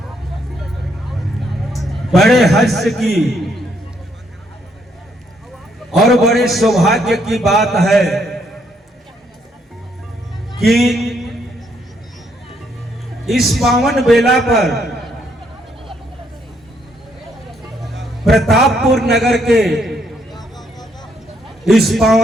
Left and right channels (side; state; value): both; normal; correlation 0.72